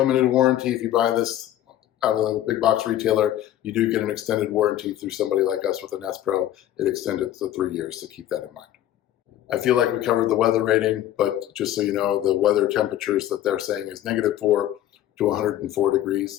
warranty if you buy this out of a big box retailer, you do get an extended warranty through somebody like us with a Nest Pro. It extended to 3 years, so keep that in mind. I feel like we covered the weather rating, but just so you know, the weather temperatures that they're saying is -4 to 104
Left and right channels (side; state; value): right; quieter; 12.6 dB